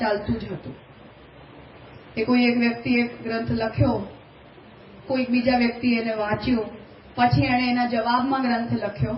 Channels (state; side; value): identical; both; correlation 1.00